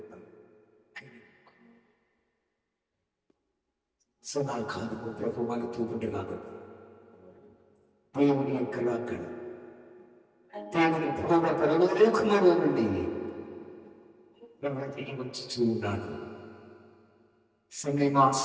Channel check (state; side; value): identical; both; correlation 1.00